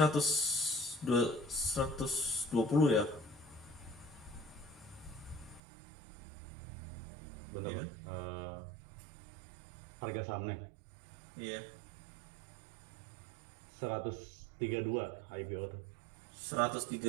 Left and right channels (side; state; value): left; drops out; at 5.6 s